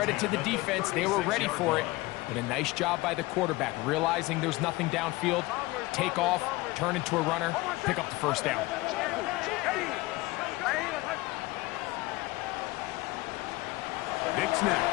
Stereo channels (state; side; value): quieter; right; 20.8 dB